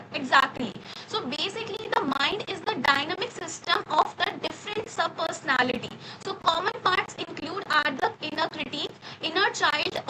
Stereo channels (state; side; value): identical; both; correlation 1.00